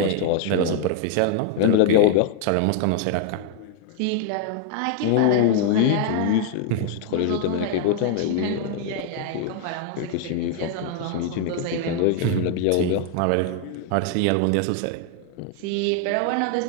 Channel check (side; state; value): both; different; correlation 0.00